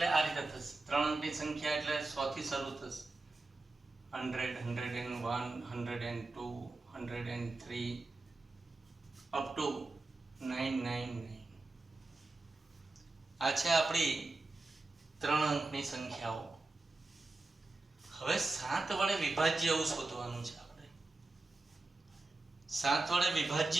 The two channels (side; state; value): left; quieter; 3.3 dB